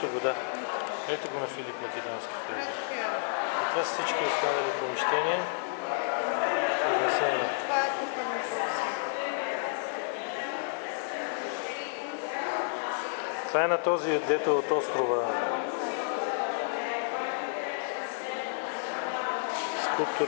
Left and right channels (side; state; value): right; silent; digital silence